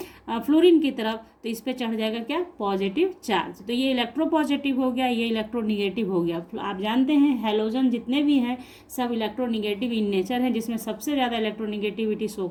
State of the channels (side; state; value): both; identical; correlation 1.00